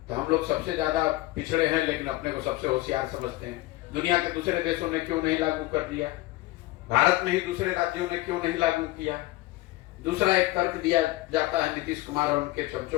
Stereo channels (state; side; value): quieter; right; 18.3 dB